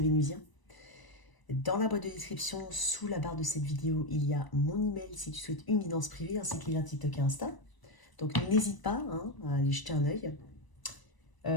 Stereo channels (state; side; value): late; right; 1.0 ms